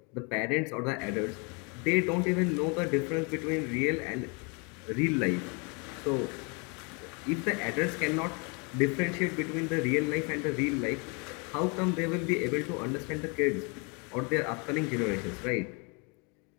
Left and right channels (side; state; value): right; quieter; 33.0 dB